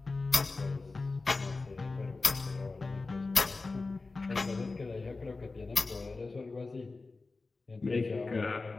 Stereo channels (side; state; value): right; quieter; 3.7 dB